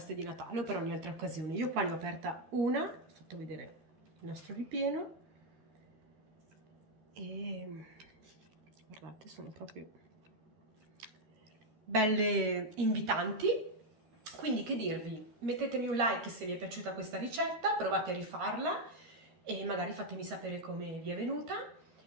di Natale o per ogni altra occasione. Io qua ne ho aperta una, ho fatto vedere il nostro ripieno e guardate, sono proprio belle invitanti. Quindi che dirvi, mettetemi un like se vi è piaciuta questa ricetta, provate a rifarla e magari fatemi sapere come vi è venuta.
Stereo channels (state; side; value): late; left; 13 ms